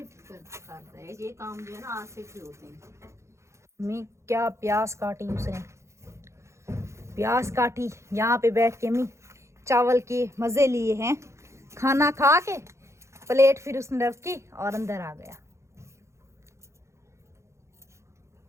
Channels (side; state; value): left; late; 0.14 ms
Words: करता है ये काम, जो है ना आसिफ ही होते हैं। मैं क्या प्याज काटी उसने, प्याज काटी यहाँ पे बैठ के मैं चावल के मज़े लिए हैं, खाना खा के प्लेट फिर उसने रखी और अंदर आ गया।